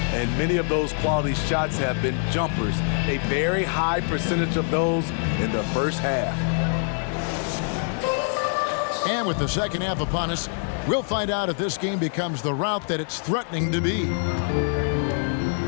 And many of those quality shots have been jumpers, a very high percentage of those in the first half. And with the second half upon us, we'll find out if this game becomes the route that it's threatening to be.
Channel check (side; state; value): right; silent; 55 dB below the other